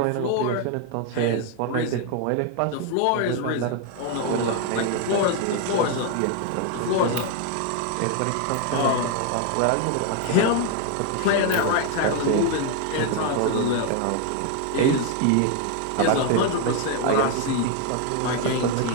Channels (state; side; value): different; both; correlation 0.00